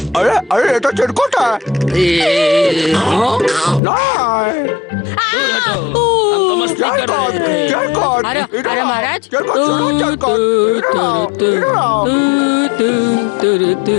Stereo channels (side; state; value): right; drops out; at 3.8 s